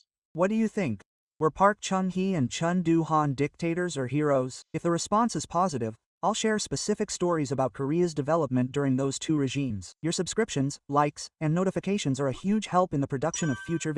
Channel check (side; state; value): both; identical; correlation 1.00